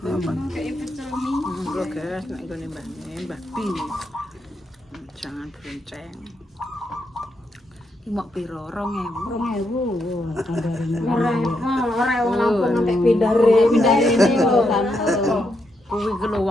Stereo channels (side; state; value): both; normal; correlation 0.80